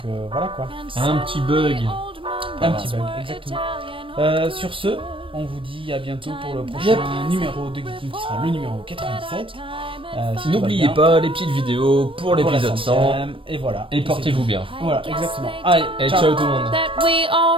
voilà quoi. Un petit bug. Un petit bug, exactement. Sur ce, on vous dit à bientôt pour le prochain numéro de Geeking qui sera le numéro 97. N'oubliez pas les petites vidéos pour l'épisode 100. Et voilà. Et portez-vous bien. Voilà, exactement. Allez, et ciao tout le monde.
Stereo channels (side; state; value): left; late; 0.25 ms